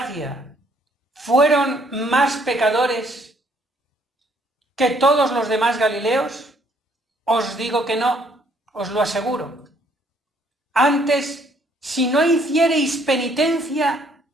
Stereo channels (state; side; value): normal; both; correlation 0.65